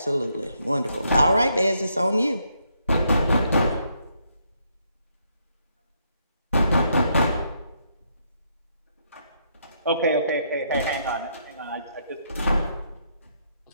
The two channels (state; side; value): inverted; both; correlation -0.75